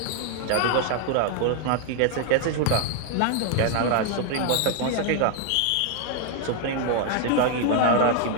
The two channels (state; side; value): different; both; correlation 0.00